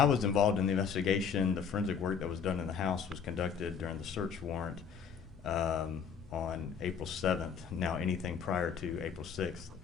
was involved in the investigation, the forensic work that was done in the house was conducted during the search warrant on April 7th. Now, anything prior to April 6th,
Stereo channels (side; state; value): right; quieter; 6.8 dB